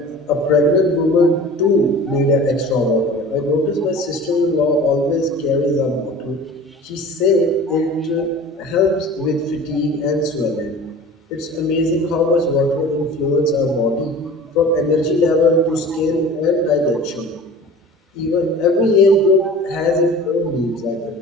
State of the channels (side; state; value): both; normal; correlation 0.41